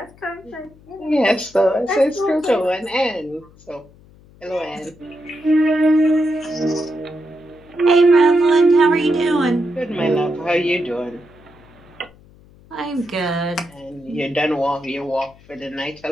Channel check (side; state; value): left; noise; hum, 26 dB below the sound